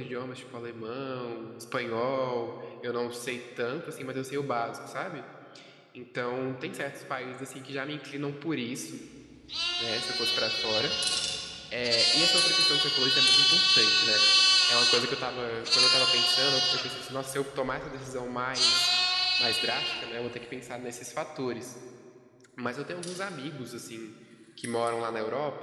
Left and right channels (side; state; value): both; identical; correlation 1.00